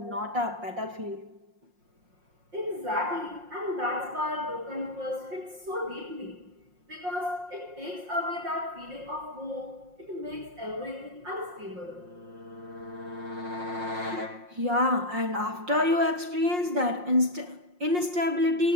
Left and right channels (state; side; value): late; left; 5.6 ms